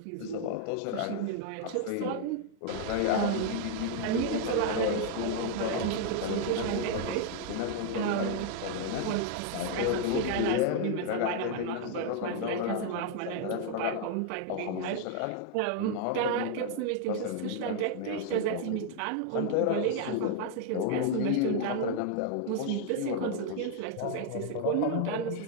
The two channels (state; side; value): different; both; correlation 0.00